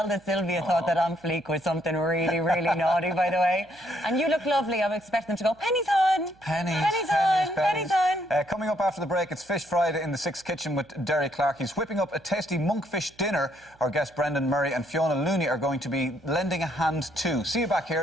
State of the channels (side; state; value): right; noise; hum, 29 dB below the sound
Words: that Sylvia thought that on fleek was something really, really naughty, by the way. And you look lovely. I'm expecting to go, pennies on. Pennies on. Coming up after the break, it's Fish Friday in the Six Kitchen with Derry Clark. He's whipping up a tasty monkfish dinner. Our guests Brendan Murray and Fiona Looney are going to be lending a hand too. See you back